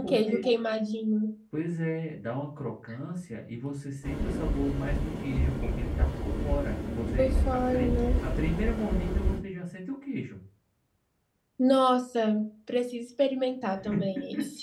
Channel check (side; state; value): both; identical; correlation 1.00